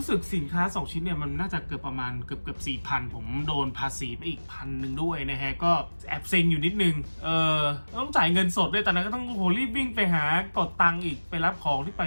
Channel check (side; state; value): both; inverted; correlation -1.00